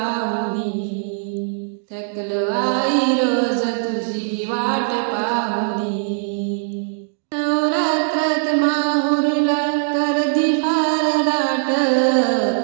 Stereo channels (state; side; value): silent; left; digital silence